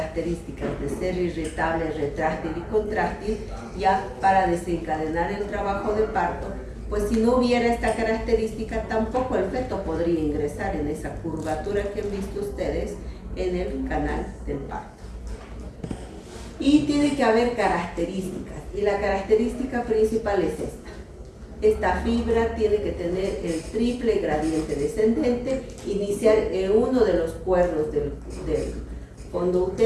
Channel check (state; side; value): identical; both; correlation 1.00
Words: de ser irritable, retráctil y contráctil, ya para desencadenar el trabajo de parto, pues si no hubiera esta característica, tampoco el feto podría ingresar en esa curvatura que han visto ustedes en el canal del parto. Y tiene que haber características, y la característica principal es esta. Esta fibra tiene que tener el triple gradiente descendente, iniciar en uno de los cuernos del fondo